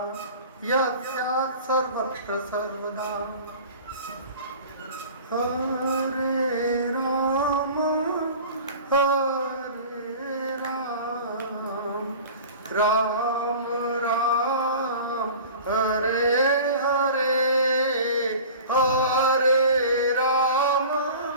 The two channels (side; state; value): both; inverted; correlation -0.40